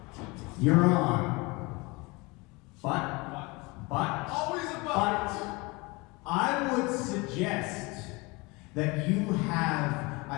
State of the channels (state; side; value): quieter; right; 25.4 dB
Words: you're on. But, Always a but, I would suggest that you have